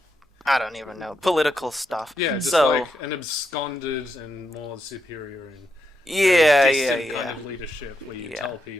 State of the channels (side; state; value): both; normal; correlation 0.83